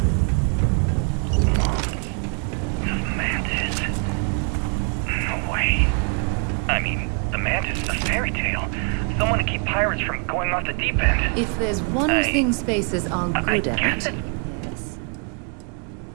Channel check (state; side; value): quieter; left; 39.0 dB